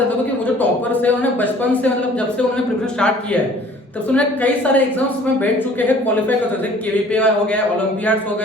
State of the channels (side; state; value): both; normal; correlation 0.52